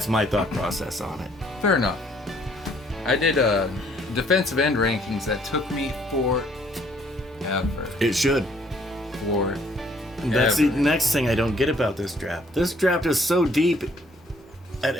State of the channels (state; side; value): normal; both; correlation 0.63